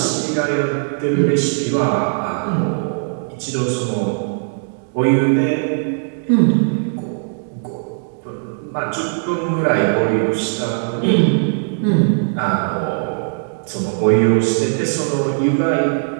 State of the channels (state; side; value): silent; left; digital silence